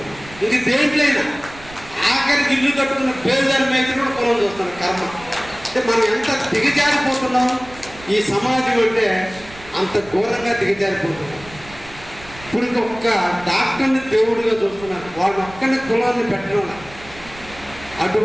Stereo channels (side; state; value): right; noise; rumble, 19 dB below the sound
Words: ఇది దేంట్లైనా ఆఖరికి ఇల్లు కట్టుకున్న పేదల మీద కూడా కులం చూస్తున్నారు. కర్మ అంటే మనం ఎంత దిగజారిపోతున్నాం ఈ సమాజం అంటే అంత ఘోరంగా దిగజారిపోతున్నాం. ఇప్పుడు ఒక్క డాక్టర్ని దేవుడిగా చూస్తున్నారు, వాళ్ళ ఒక్కరిని కులాన్ని పెట్టడం.